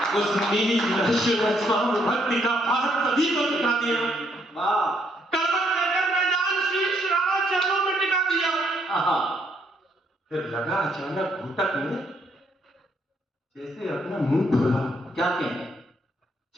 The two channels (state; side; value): normal; both; correlation 0.71